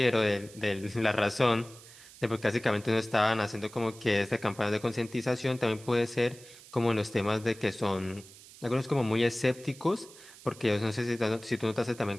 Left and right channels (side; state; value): right; noise; hiss, 20 dB below the sound